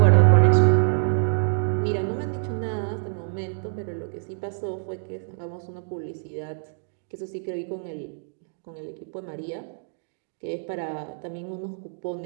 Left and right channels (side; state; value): left; silent; digital silence